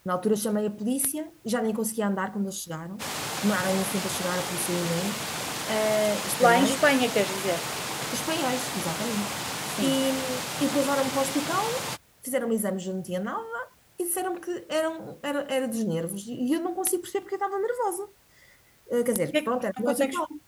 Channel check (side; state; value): both; identical; correlation 1.00